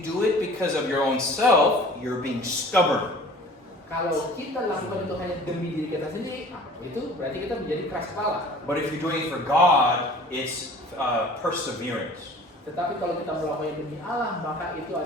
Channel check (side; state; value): both; normal; correlation 0.46